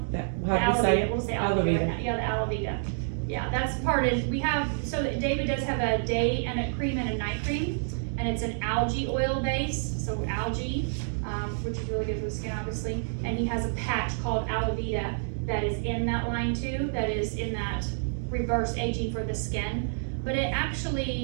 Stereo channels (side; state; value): left; silent; digital silence